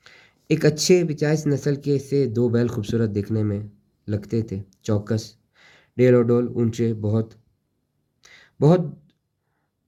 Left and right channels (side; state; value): both; identical; correlation 1.00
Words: ایک اچھے 85 نسل کے سے 2 بیل خوبصورت دیکھنے میں لگتے تھے، چوکس، ڈیل و ڈول، اونچے، بہت